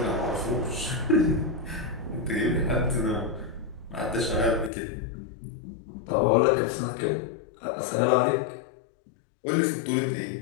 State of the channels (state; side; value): drops out; right; at 4.7 s